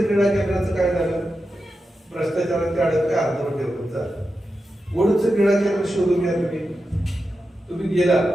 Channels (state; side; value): normal; both; correlation 0.90